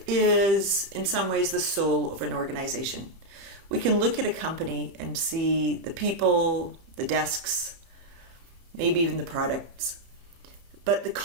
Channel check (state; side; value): late; left; 30 ms